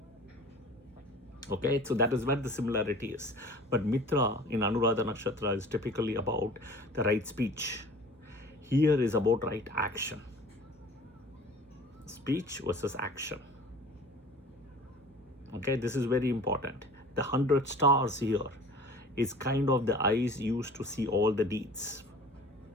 Okay, so that is where the similarity is. But Mitra in Anuradha Nakshatra is typically about the right speech. Here is about right action. Speech versus action. Okay, this is very important. The 100 stars here is kind of the eyes used to see all the deeds.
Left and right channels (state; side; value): normal; both; correlation 0.44